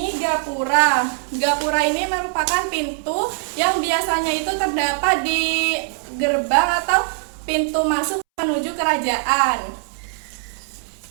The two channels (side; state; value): left; silent; 65 dB below the other